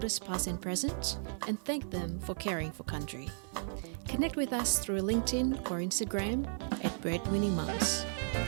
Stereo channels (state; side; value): silent; left; digital silence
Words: past and present, and thank them for caring for country. Connect with us through LinkedIn or Instagram at Breadwinning Mums.